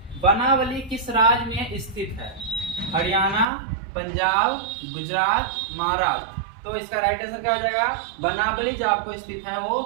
बनावली किस राज्य में स्थित है? हरियाणा, पंजाब, गुजरात, महाराष्ट्र। तो इसका राइट आंसर क्या हो जाएगा? बनावली जो आपको स्थित है वो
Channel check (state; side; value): drops out; left; at 3.5 s